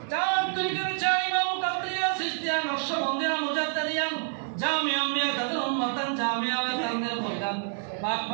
চার তরিকার চার ইমাম কাদরিয়া সিস্তিয়া নকশবন্দিয়া মুজাদ্দিদিয়া জামিয়া আম্বিয়া তাদের উম্মতান জামিয়া তাদের ময়দান পাক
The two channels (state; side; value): silent; left; digital silence